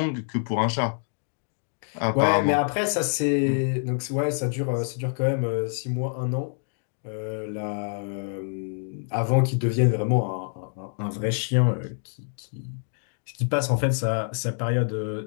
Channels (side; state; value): right; silent; digital silence